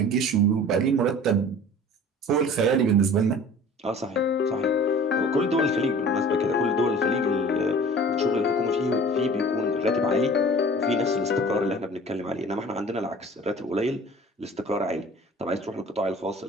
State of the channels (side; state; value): both; normal; correlation 0.44